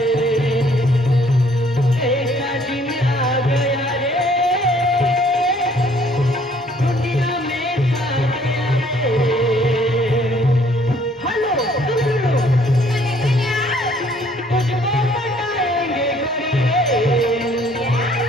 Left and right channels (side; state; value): both; normal; correlation 0.61